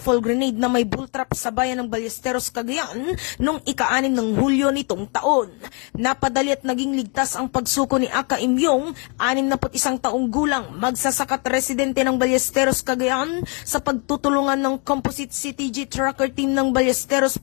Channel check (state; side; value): quieter; right; 35.1 dB